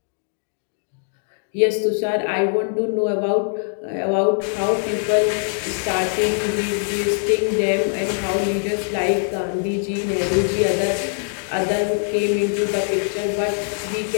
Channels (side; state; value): right; silent; digital silence